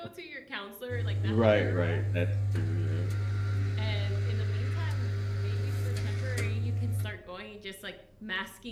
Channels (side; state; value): both; identical; correlation 1.00